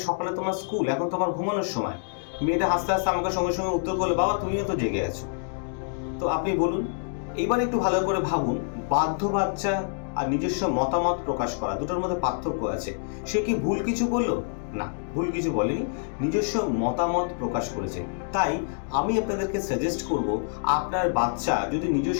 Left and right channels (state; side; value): silent; right; digital silence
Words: সকালে তোমার স্কুল, এখন তোমার ঘুমানোর সময়। মেয়েটা হাসতে হাসতে আমাকে সঙ্গে সঙ্গে উত্তর করলো, বাবা তুমিও তো জেগে আছো। তো আপনি বলুন, এবার একটু ভালো করে ভাবুন, বাধ্য বাচ্চা আর নিজস্ব মতামত প্রকাশ করা, দুটোর মধ্যে পার্থক্য আছে। সে কি ভুল কিছু বললো? না, ভুল কিছু বলেনি, নিজস্ব মতামত প্রকাশ করেছে। তাই আমি আপনাদেরকে সাজেস্ট করব, আপনার বাচ্চা যদি